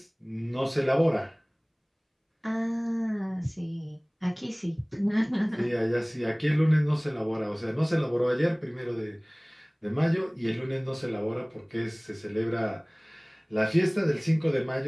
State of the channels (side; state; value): both; identical; correlation 1.00